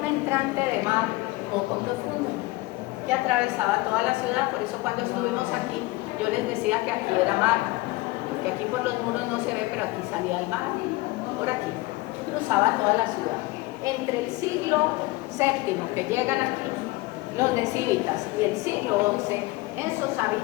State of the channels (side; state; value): right; quieter; 21.1 dB